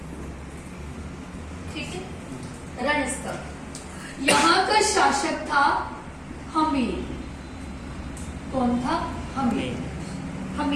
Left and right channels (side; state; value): both; identical; correlation 1.00